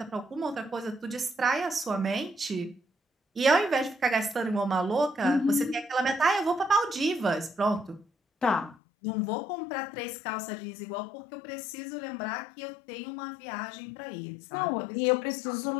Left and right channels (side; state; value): right; drops out; at 8.8 s